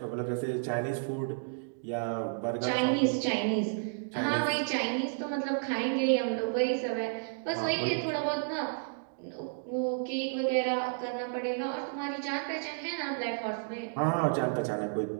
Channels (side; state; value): left; silent; digital silence